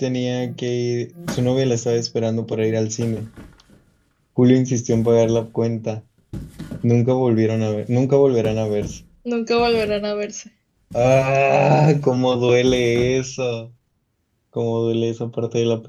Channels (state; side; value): identical; both; correlation 1.00